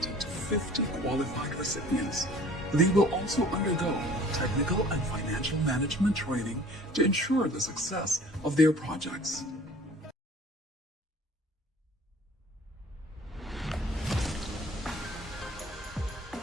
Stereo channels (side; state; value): both; normal; correlation 0.49